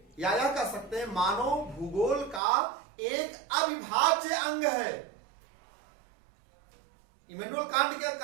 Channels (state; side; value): drops out; left; at 2.4 s